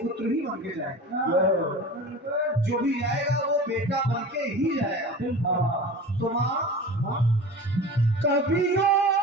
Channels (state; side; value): normal; both; correlation 0.35